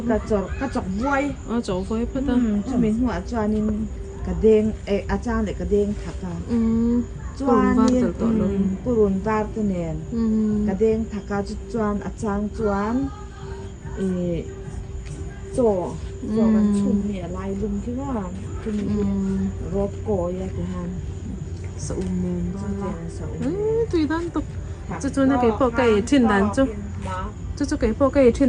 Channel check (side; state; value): both; identical; correlation 1.00